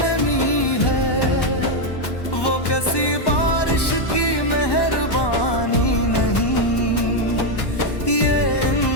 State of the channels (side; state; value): right; late; 1.1 ms